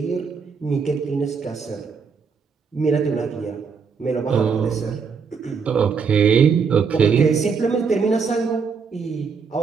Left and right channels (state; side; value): quieter; left; 5.7 dB